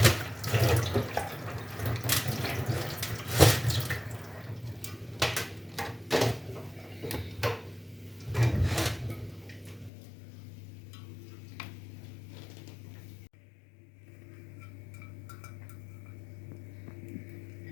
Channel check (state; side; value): drops out; right; at 9.9 s